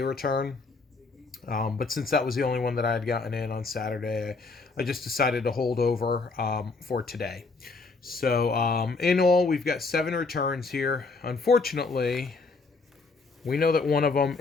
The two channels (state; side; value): quieter; right; 4.0 dB